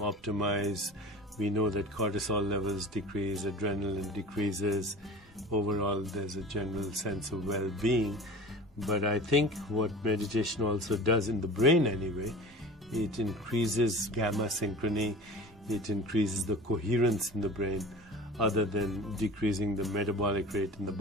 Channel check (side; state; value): both; normal; correlation 0.38